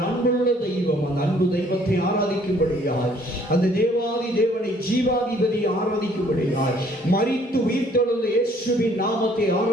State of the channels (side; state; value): both; normal; correlation 0.60